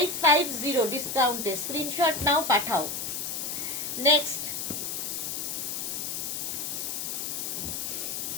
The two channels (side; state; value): left; noise; hiss, 3 dB below the sound